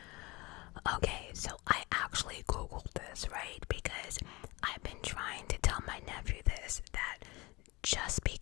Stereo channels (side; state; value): right; quieter; 23.4 dB